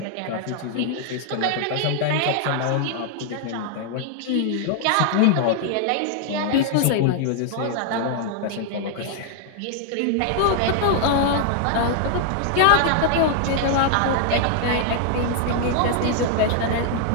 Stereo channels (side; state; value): both; different; correlation 0.00